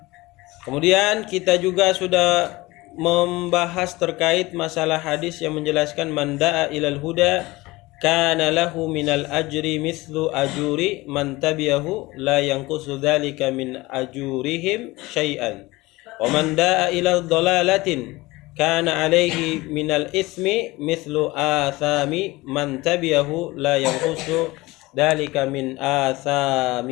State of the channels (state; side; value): quieter; right; 20.9 dB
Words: Kemudian kita juga sudah membahas terkait masalah hadis yang menjelaskan man da'a ilal huda kana lahu minal ajri mithlu ajuri man tabi'ahu la yanqusu dzalika min ajurihim syai'an wa man da'a ilal dhalalatin kana alaihi minal ithmi mithlu athami man tabi'ahu la yanqusu dzalika min